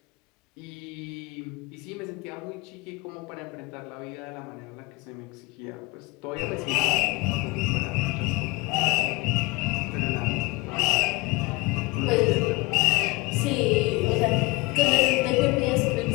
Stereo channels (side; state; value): right; quieter; 23.7 dB